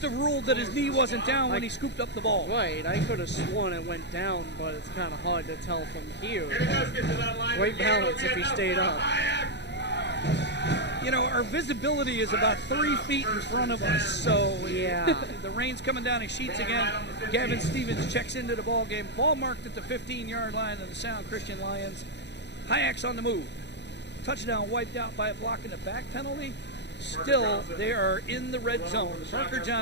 have ruled that his knee wasn't down when he scooped up the ball. Right, I could have sworn it went down, but it's kind of hard to tell from here. Great balance if he stayed up. Our visibility is about 3 feet in front of us, so yeah. The rain's coming down in sheets again. Gavin Stevens checks into the ball game. Ball marked at the 15-yard line of the Sound Christian Lions. Hyaks on the move. Touchdown wiped out by a block and a back penalty. Still, they are in the red zone. Parker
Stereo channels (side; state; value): right; late; 0.50 ms